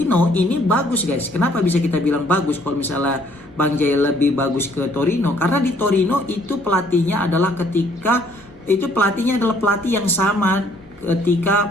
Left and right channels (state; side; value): noise; left; rumble, 28 dB below the sound